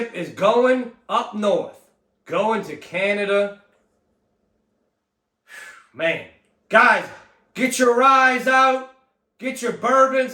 is going up north. Going to Canada. Man. Guys, get your ryes out. Get your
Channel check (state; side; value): identical; both; correlation 1.00